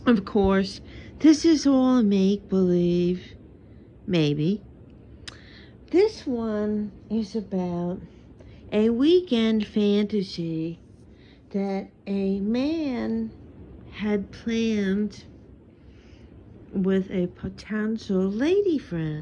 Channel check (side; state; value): both; identical; correlation 1.00